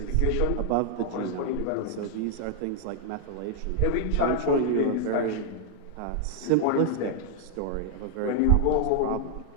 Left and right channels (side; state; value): both; different; correlation 0.00